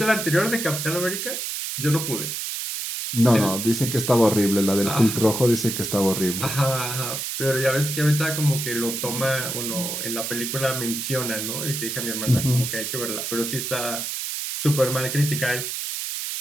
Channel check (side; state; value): right; noise; hiss, 4 dB below the sound